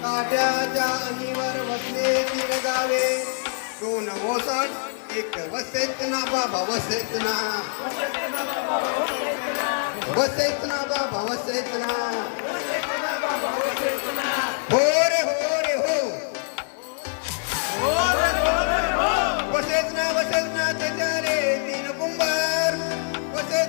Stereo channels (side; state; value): right; silent; 59 dB below the other